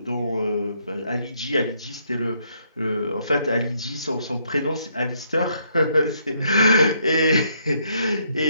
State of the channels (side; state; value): both; inverted; correlation -0.71